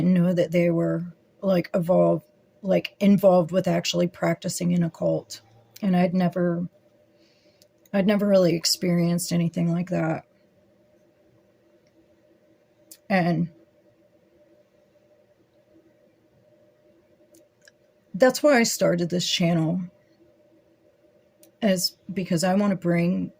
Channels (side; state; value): both; identical; correlation 1.00